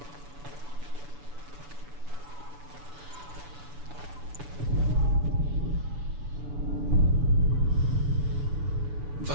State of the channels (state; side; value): late; left; 7.0 ms